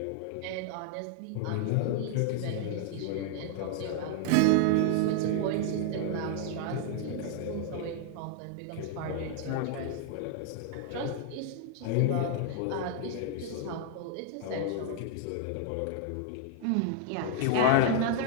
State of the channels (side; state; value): both; different; correlation 0.00